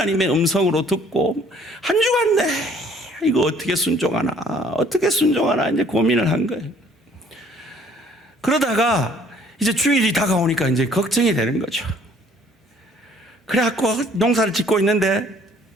음성으로 듣고 한 주간 이거 어떻게 순종하나 이제 고민을 한 거예요. 그러다가 이제 주일이 다가오니까 이제 걱정이 되는 거죠. 그래갖고 농사를 짓고 있는데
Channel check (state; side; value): normal; both; correlation 0.58